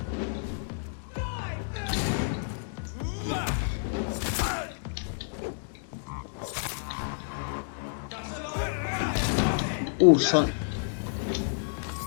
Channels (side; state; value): right; silent; digital silence